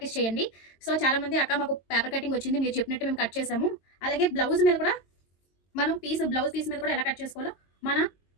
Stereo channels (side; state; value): right; late; 22 ms